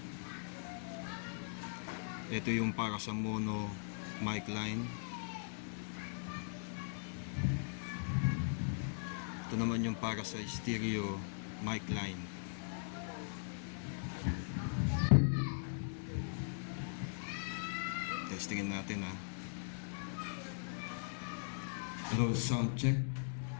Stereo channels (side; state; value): right; silent; 51 dB below the other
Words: Ito yung para sa mono mic line. Ito naman yung para sa stereo mic line. Testingin natin ha. Hello, sound check.